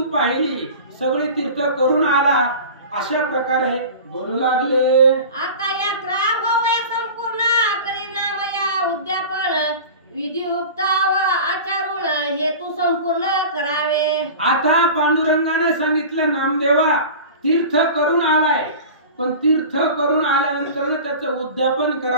पाहिली, सगळी तीर्थ करून आला, अशा प्रकारे बोलू लागले. आता यात्रा होऊया संपूर्ण, करी नामया उद्यापन, विधियुक्त व आचारून, हे तू संपूर्ण करावे. आता पांडुरंगाने सांगितलं, नामदेवा तीर्थ करून आलाय, पण तीर्थ करून आल्यानंतर त्याचं उद्यापन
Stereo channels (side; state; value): both; inverted; correlation -0.35